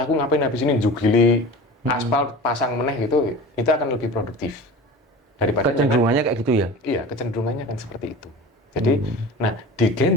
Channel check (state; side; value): normal; both; correlation 0.36